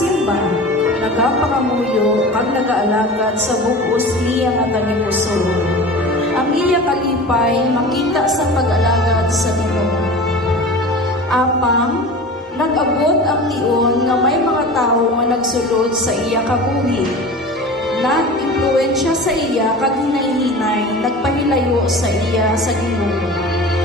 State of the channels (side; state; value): both; normal; correlation 0.35